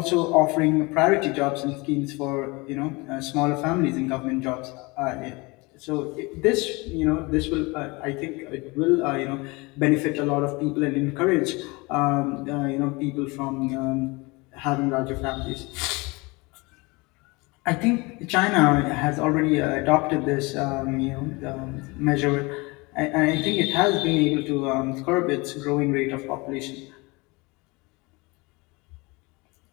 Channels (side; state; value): right; quieter; 25.5 dB